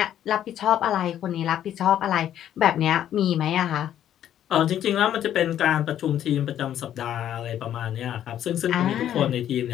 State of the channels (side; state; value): right; quieter; 10.9 dB